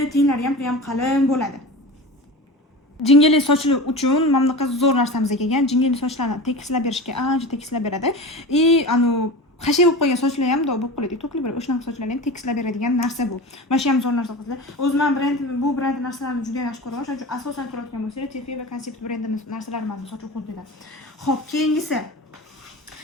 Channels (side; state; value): both; normal; correlation 0.31